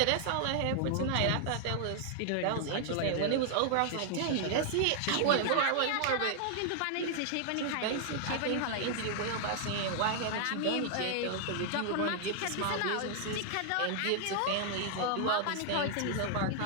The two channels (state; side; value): different; both; correlation -0.01